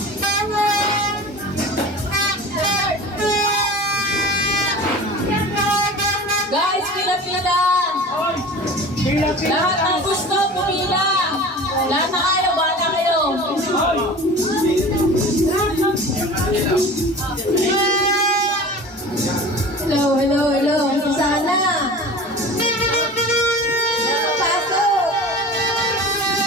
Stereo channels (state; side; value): normal; both; correlation 0.37